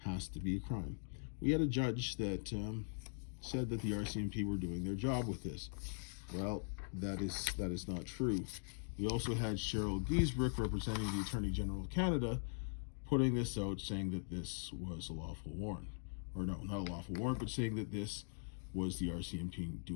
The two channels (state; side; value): silent; right; digital silence